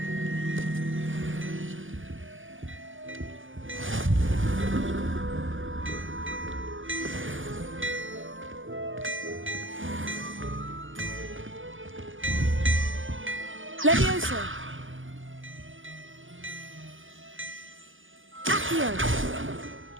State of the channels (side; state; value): left; late; 0.58 ms